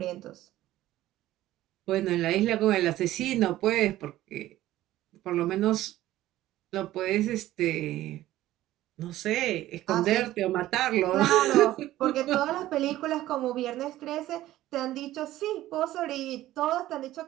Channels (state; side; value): quieter; left; 14.9 dB